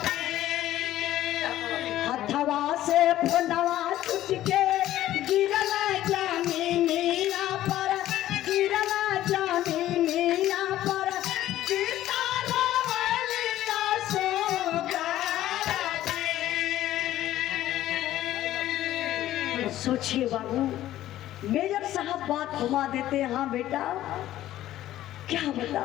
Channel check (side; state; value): right; quieter; 13.7 dB